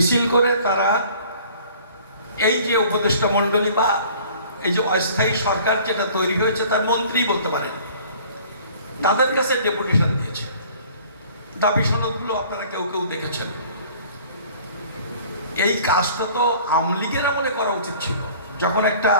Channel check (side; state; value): both; inverted; correlation -0.50